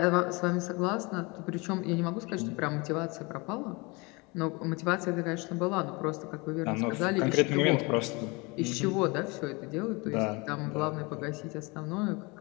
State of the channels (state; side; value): quieter; right; 26.9 dB